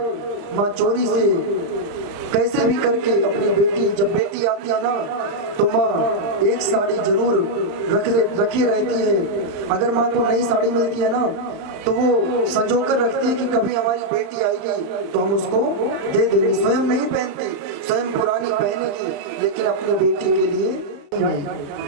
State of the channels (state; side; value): late; left; 35 ms